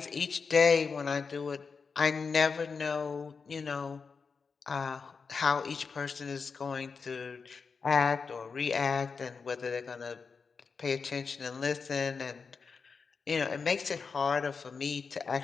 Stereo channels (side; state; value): right; quieter; 5.2 dB